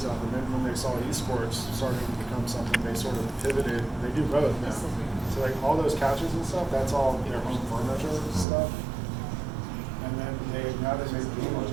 and then when they saw eSports starting to become something, they sort of pivoted. They do both now. So So like all those couches and stuff, that's all their home furniture stuff. And then now they make gaming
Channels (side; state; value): left; drops out; at 8.5 s